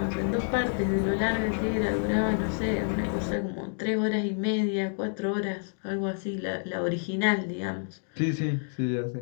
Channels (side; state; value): right; silent; digital silence